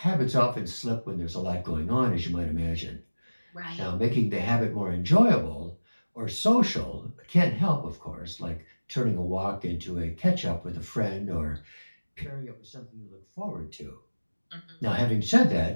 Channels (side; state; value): both; inverted; correlation -1.00